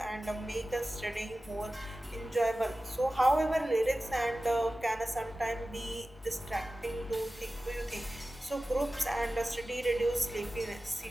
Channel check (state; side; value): normal; both; correlation 0.95